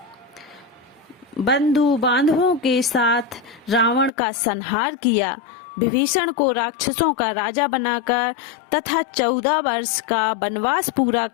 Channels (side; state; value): right; drops out; at 4.1 s